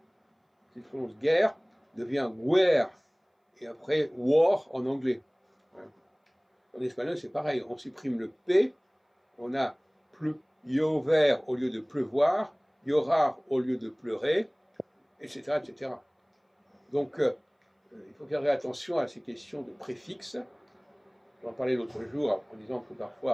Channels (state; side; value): identical; both; correlation 1.00